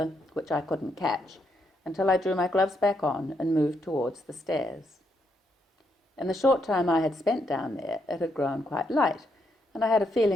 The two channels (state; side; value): normal; both; correlation 0.77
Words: which I couldn't catch, until I drew my gloves back on and moved towards the stairs. In the short time I had spent down there, it had grown quite light, and I had a